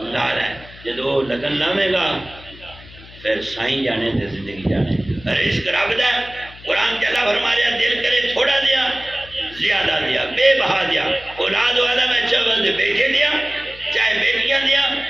لا لے. جدو لگن لاوے گا پھر سائیں جانے تے زندگی جانے. رزق رب دا قرآن چلا فرما رہا دل کرے تھوڑا دیا زیادہ دیا، بے بہا دیا. اولاد والا میں چاول دے بیٹے دیا، چاہے بیٹیاں دیا،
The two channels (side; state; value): left; noise; hum, 20 dB below the sound